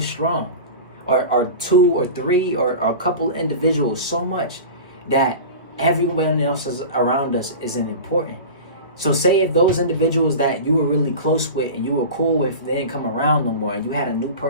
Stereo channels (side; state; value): both; inverted; correlation -0.32